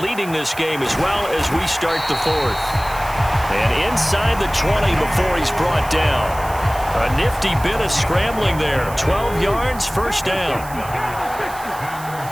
this game as well as we start the 4th. And inside the 20 before he's brought down. A nifty bit of scrambling there. 12 yards, first down.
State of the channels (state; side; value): noise; right; hiss, 16 dB below the sound